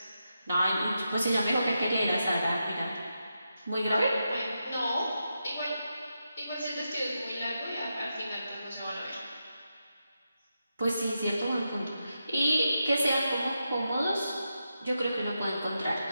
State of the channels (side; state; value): both; inverted; correlation -0.87